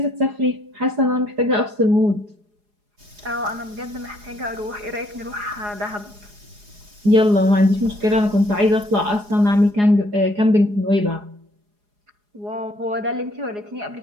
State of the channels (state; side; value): late; left; 4.8 ms